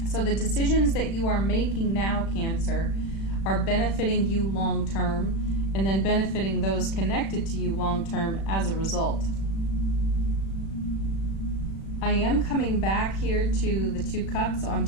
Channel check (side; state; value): right; late; 36 ms